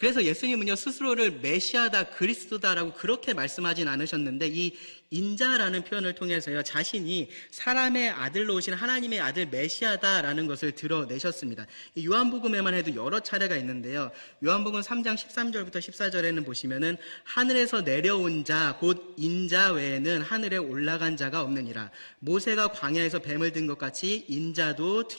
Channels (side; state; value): both; inverted; correlation -1.00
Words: 예수님은요, 스스로를 메시아다, 그리스도다라고 그렇게 말씀하진 않으셨는데, 이 인자라는 표현을 통해서요, 자신이 사람의 아들로 오신 하나님의 아들 메시아다라는 것을 드러내셨습니다. 요한복음에만 해도 여러 차례가 있는데요, 요한복음 3장 13절부터 14절에는 보시면은 하늘에서 내려온 자, 곧 인자 외에는 하늘에 올라간 자가 없느니라. 모세가 광야에서 뱀을 든 것 같이 인자도